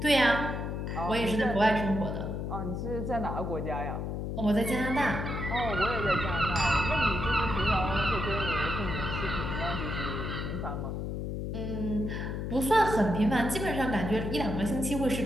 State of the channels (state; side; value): noise; left; hum, 3 dB below the sound